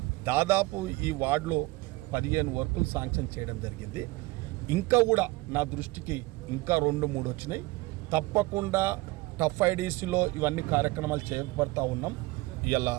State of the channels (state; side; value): quieter; left; 21.2 dB